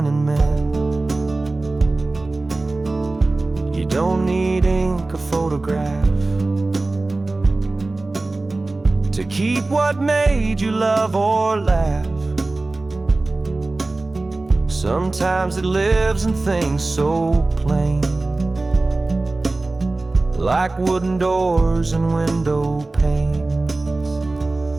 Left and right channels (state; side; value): quieter; left; 3.2 dB